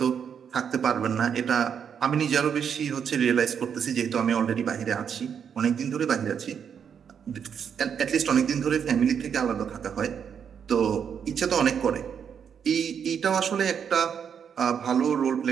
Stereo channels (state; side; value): quieter; left; 7.6 dB